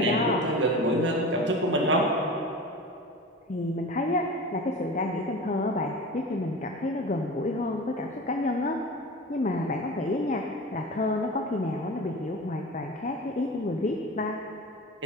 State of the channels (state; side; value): normal; both; correlation 0.33